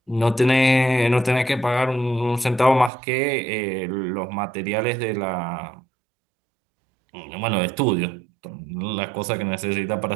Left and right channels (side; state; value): left; drops out; at 2.9 s